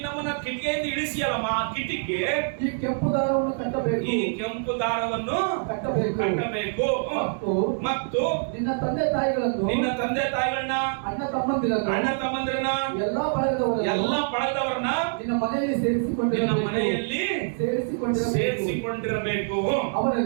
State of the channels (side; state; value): left; silent; digital silence